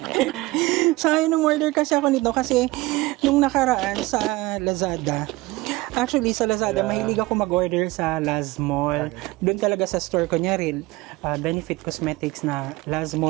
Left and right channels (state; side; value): quieter; left; 20.7 dB